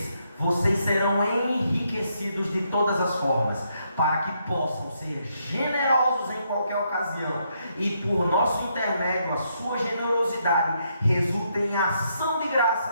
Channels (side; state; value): both; inverted; correlation -0.76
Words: vocês serão enriquecidos de todas as formas, para que possam ser generosos em qualquer ocasião, e por nosso intermédio a sua generosidade resulte em ação de